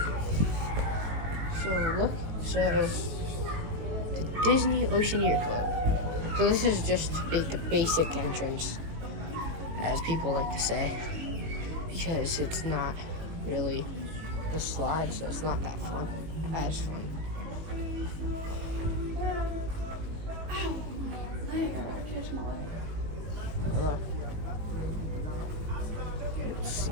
So look, so the Disney Oceaneer Club. So this is just the basic entrance, as people like to say, because it's not really the slide, so it's not that fun. As fun. Hello.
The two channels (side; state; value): left; late; 19 ms